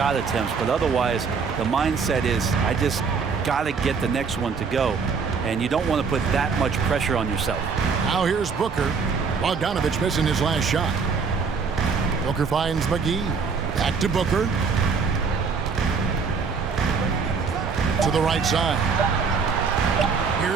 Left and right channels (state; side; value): quieter; left; 5.4 dB